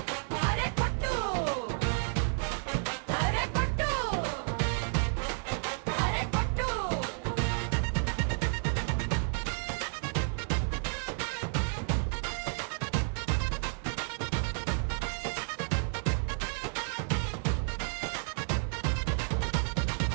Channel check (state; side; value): silent; left; 57 dB below the other